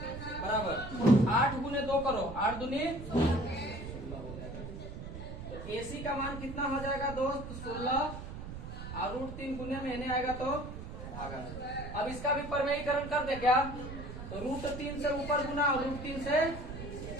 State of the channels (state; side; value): noise; right; rumble, 9 dB below the sound